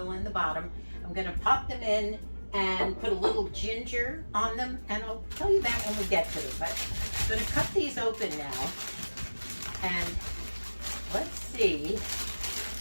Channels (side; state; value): both; inverted; correlation -1.00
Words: in the bottom. I'm gonna pop them in and put a little ginger on them, and I'll tell you that when we get to them. But I'm gonna cut these open now, and let's see